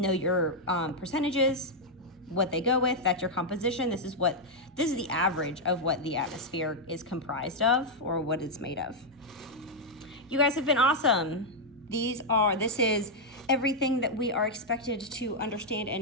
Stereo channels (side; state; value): both; normal; correlation -0.02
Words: your percentages, what they go with. That's your composition. This is the average of what the atmosphere is comprised of, or what it's made of. You guys have been awesome. This is everything that we are expected to understand